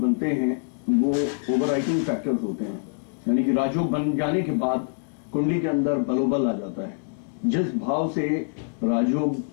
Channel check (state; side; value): silent; right; digital silence